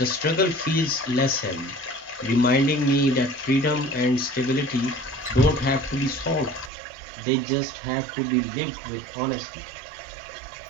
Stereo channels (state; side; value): drops out; left; at 6.7 s